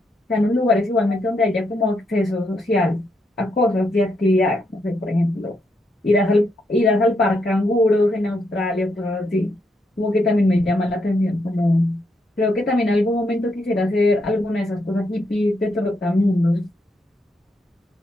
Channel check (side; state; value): both; normal; correlation 0.79